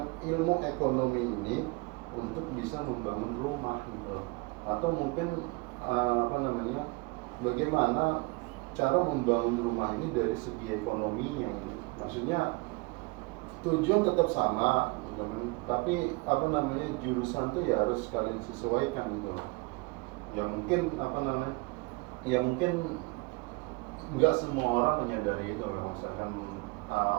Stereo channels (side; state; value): left; quieter; 26.4 dB